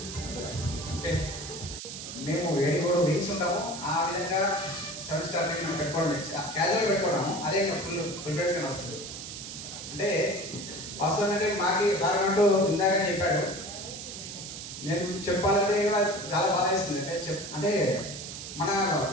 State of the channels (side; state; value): right; noise; hiss, 9 dB below the sound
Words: మేము 7 వీక్స్ ఉంటాము. ఆ విధంగా 7 స్టార్ మేము పెట్టుకోవడం క్యాజువల్ పెట్టుకోవడము అదే ఫుల్ ప్రిపరేషన్ వస్తుంది. అంటే వాస్తవం అంటే మాకు సార్ అంటూ ఇందాకనే చెప్పాడు. నేను చెప్పాలంటే కూడా చాలా బాగా వేస్తుంది. అంటే మన